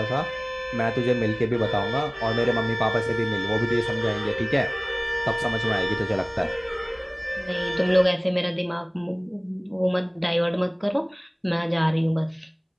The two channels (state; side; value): identical; both; correlation 1.00